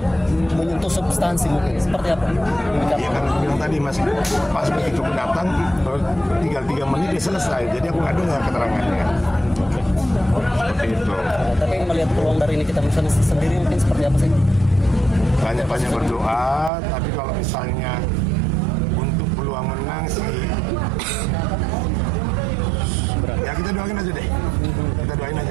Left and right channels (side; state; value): left; drops out; at 16.7 s